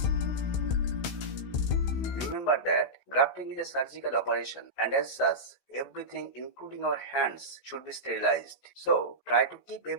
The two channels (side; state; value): right; late; 16 ms